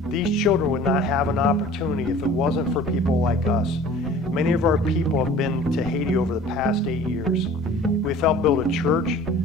These children would not have an opportunity if it wasn't for people like us. Many of our people have been to Haiti over the past 8 years. We've helped build a church,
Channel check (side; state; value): both; normal; correlation 0.46